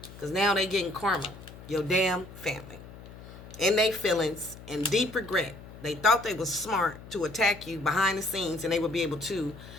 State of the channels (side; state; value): left; noise; hum, 16 dB below the sound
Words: because now they getting karma. Your damn family in their feelings and deep regret. They thought they was smart to attack you behind the scenes, and they would be able to